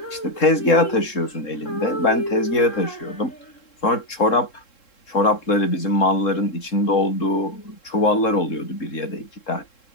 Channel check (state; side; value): late; right; 3.7 ms